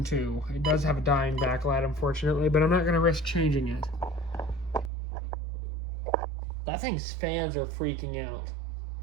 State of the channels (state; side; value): drops out; left; at 4.9 s